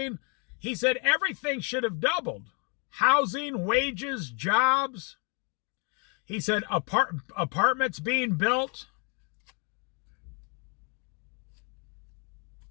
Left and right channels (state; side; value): quieter; right; 36.9 dB